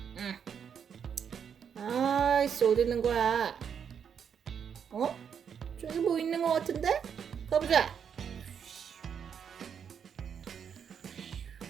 아이씨, 어디 있는 거야? 저기 뭐 있는 거 같은데? 가보자.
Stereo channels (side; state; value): left; quieter; 7.5 dB